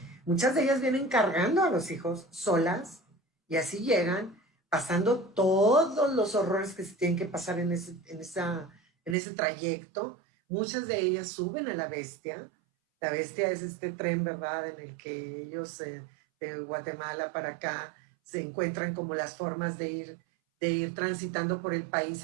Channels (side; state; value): left; drops out; at 9.2 s